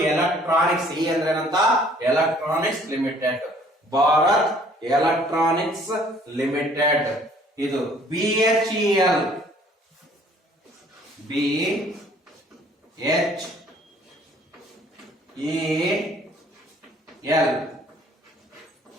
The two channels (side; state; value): both; normal; correlation 0.57